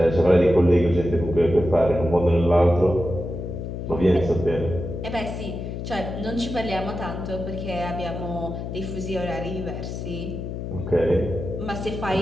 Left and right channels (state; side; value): noise; left; hum, 6 dB below the sound